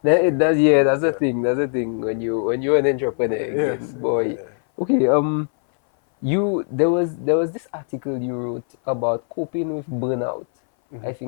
That, So, it does, yeah, that's the yeah. thing. That's the thing when you're an entrepreneur Yes. again, boy. Yeah. Okay, there was this article you wrote about coping with burnout. I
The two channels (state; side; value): silent; right; 60 dB below the other